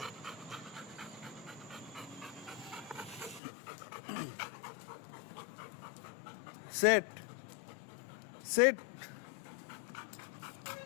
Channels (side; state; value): right; drops out; at 3.4 s